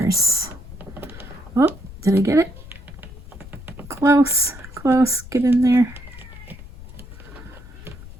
Oh, did I get it? Close, close, get in there.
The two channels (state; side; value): noise; left; rumble, 16 dB below the sound